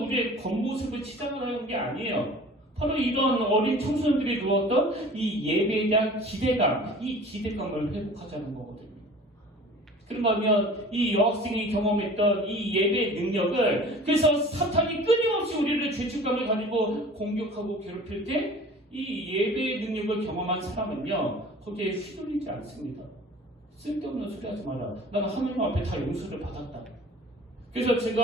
우리의 겉모습을 치장하는 게 아니에요. 바로 이런 어린 청소년들이 누웠던 이 예배에 대한 기대감, 이 기대감을 회복하자는 거거든요. 그런가 하면 이 여학생이 경험했던 이 예배의 능력을, 그래서 사탄이 끊임없이 우리를 죄책감을 가지고 공격하고 괴롭힐 때 이 예배의 능력을 경험한 사람은요, 거기에 휘둘리지 않습니다. 쓸데없는 소리 하지 마라. 나는 하나님 앞에 다 용서를 받았다. 그래서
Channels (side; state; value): both; normal; correlation 0.44